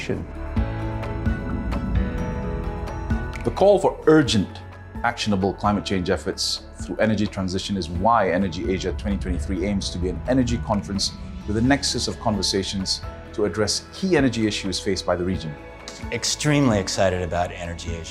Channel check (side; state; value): both; identical; correlation 1.00